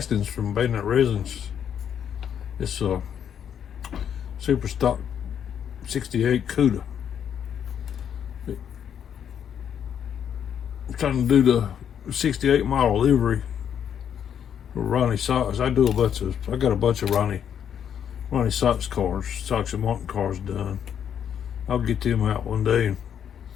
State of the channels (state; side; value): quieter; right; 8.7 dB